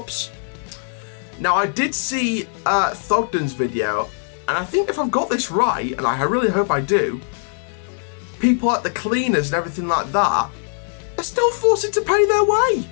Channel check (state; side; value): silent; right; 65 dB below the other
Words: Now, I did see Thogden's video, And I think if I've got this right, and I really hope I do, people like the cleaners and everything like that are still forced to pay their way.